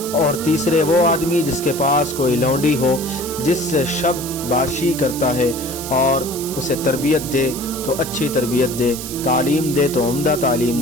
اور تیسرے وہ آدمی جس کے پاس کوئی لونڈی ہو جس سے شب باشی کرتا ہے، اور اسے تربیت دے تو اچھی تربیت دے، تعلیم دے تو عمدہ تعلیم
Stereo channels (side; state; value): right; noise; hiss, 9 dB below the sound